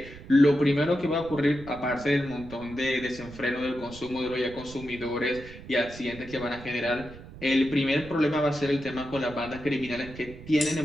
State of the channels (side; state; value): right; noise; rumble, 16 dB below the sound